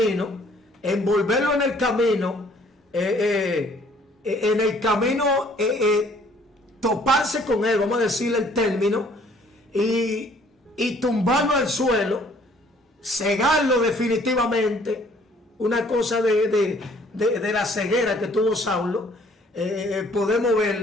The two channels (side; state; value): both; normal; correlation 0.59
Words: envolverlo en el camino, toparse con él, vamos a decirle el término, y tumbarlo al suelo, cegarlo definitivamente. Una cosa de la ceguera que tuvo Saulo, podemos